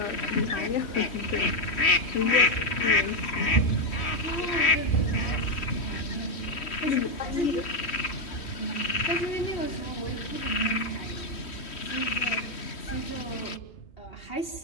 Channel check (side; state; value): right; late; 3.1 ms